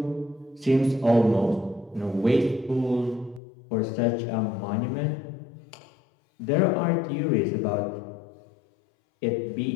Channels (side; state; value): right; drops out; at 3.4 s